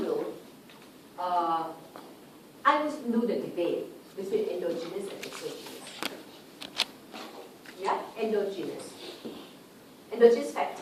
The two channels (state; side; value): identical; both; correlation 1.00